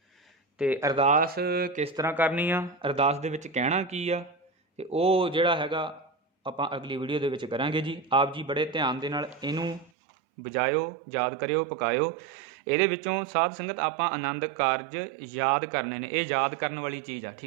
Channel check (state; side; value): drops out; left; at 9.9 s